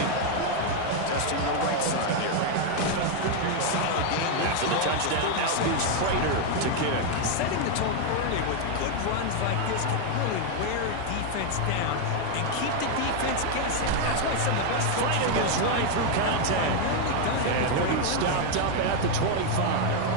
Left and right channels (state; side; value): different; both; correlation 0.01